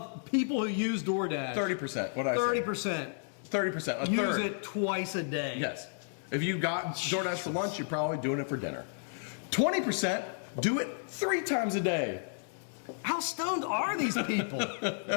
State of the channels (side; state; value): right; silent; digital silence